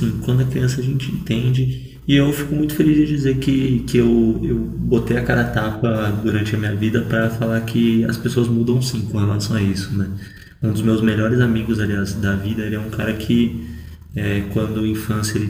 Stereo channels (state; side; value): identical; both; correlation 1.00